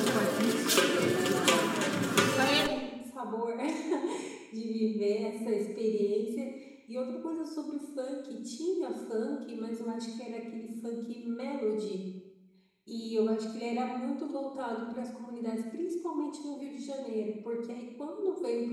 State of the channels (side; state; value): both; identical; correlation 1.00